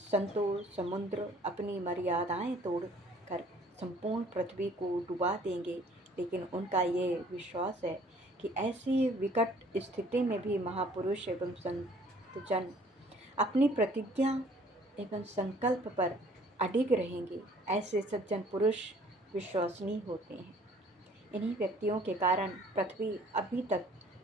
संतों समुद्र अपनी मर्यादाएं तोड़कर संपूर्ण पृथ्वी को डुबा देंगे, लेकिन उनका ये विश्वास है कि ऐसी विकट स्थिति में भी महापुरुष एवं संतजन अपनी प्रतिज्ञा एवं संकल्प पर अडिग रहेंगे। ऐसे सज्जन पुरुष विश्वसनीय होते हैं। इन्हीं व्यक्तियों के कारण पृथ्वी अभी तक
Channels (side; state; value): both; normal; correlation 0.56